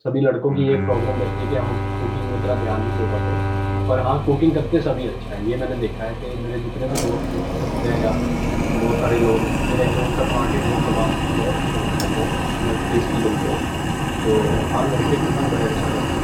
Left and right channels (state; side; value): identical; both; correlation 1.00